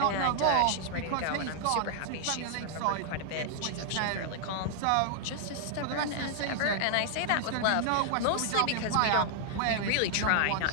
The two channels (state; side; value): different; both; correlation 0.00